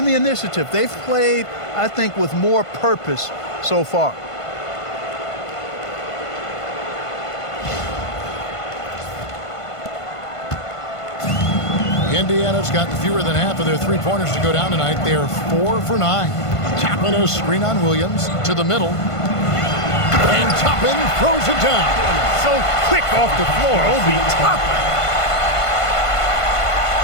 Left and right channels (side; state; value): right; late; 1.5 ms